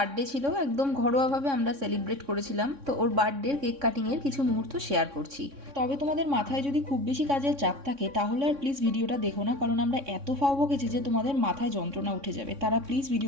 ছিল, একদম ঘরোয়াভাবে আমরা সেলিব্রেট করেছিলাম। তো ওর বার্থডের কেক কাটিংয়ের কিছু মুহূর্ত শেয়ার করছি। তবে তোমাদের মাথায় যদি খুব বেশি কাজের চাপ থাকে তাহলে আর প্লিজ ভিডিওটা দেখো না, কারণ আমরা এত ফাও বকেছি যে তোমাদের মাথায় যন্ত্রণা উঠে যাবে। তারা প্লিজ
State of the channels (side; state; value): left; late; 3.6 ms